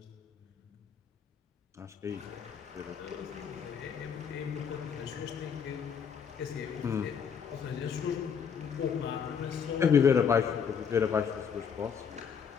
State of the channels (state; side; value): quieter; right; 7.0 dB